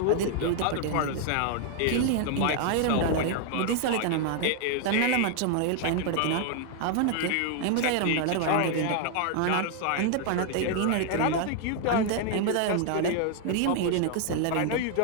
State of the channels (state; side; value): different; both; correlation 0.00